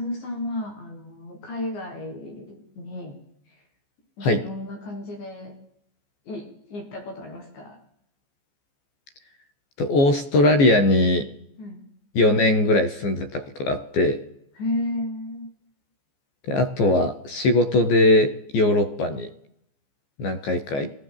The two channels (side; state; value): right; late; 14 ms